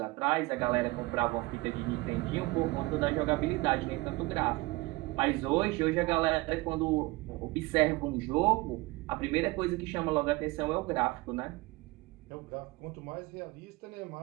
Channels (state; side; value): quieter; left; 22.0 dB